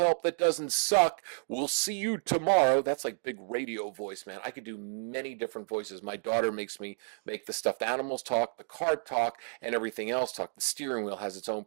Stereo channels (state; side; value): silent; left; digital silence